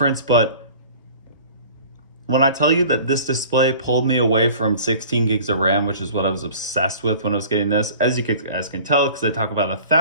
But when I tell you that this display pulled me away from 16 gigs of RAM, which is what I was obsessed with when I was getting this, as you guys can tell, because I talk about it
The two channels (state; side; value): inverted; both; correlation -0.45